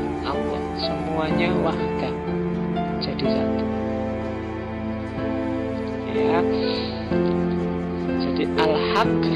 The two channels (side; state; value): both; identical; correlation 1.00